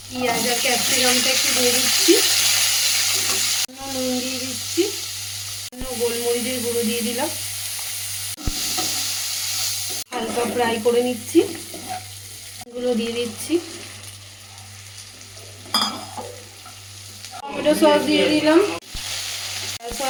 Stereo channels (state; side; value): identical; both; correlation 1.00